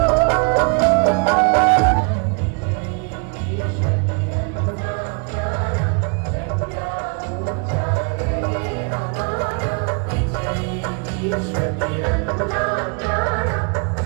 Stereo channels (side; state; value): left; quieter; 35.6 dB